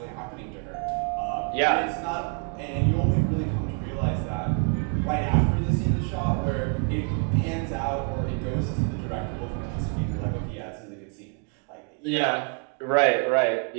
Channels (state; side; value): quieter; left; 39.2 dB